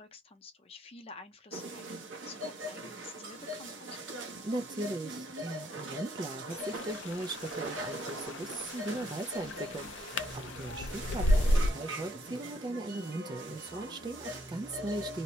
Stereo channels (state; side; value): normal; both; correlation 0.72